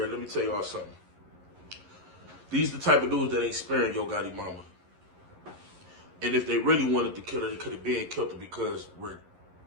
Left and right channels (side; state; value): left; late; 11 ms